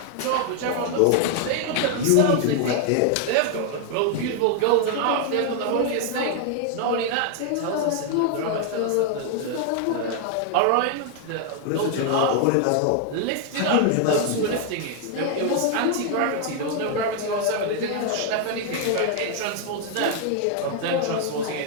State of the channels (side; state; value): both; different; correlation 0.00